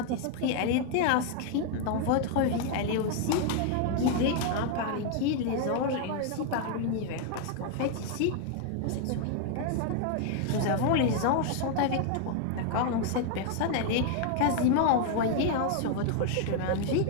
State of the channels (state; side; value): different; both; correlation 0.00